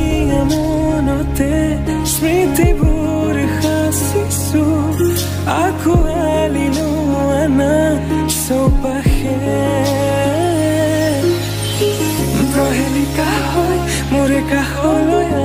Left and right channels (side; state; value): both; identical; correlation 1.00